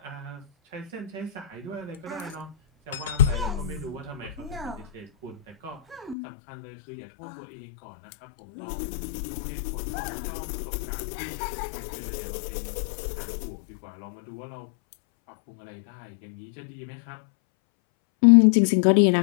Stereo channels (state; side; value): drops out; right; at 6.2 s